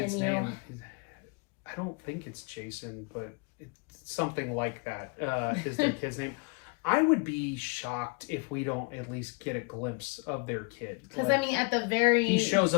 name. I don't think it's Jason, but it's something like that. Is their kid's name? I would be shocked if we don't at least get a glimpse of their kid. Because I mean, at the very he shows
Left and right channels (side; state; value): right; quieter; 32.5 dB